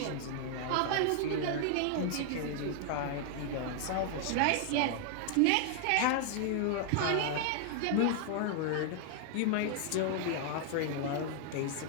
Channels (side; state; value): both; different; correlation 0.00